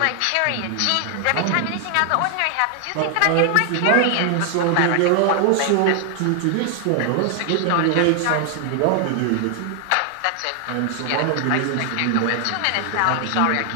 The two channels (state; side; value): different; both; correlation 0.00